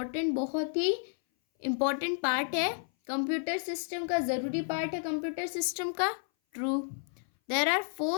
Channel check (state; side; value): silent; right; 57 dB below the other